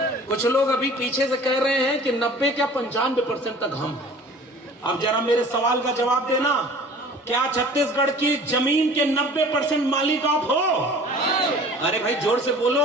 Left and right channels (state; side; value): normal; both; correlation 0.46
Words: कुछ लोग अभी पीछे से कह रहे हैं कि 90 क्या 95% तक हम हैं। अब जरा मेरे सवाल का जवाब देना, क्या छत्तीसगढ़ की जमीन के 90% मालिक आप हो? अरे भाई जोर से बोलो,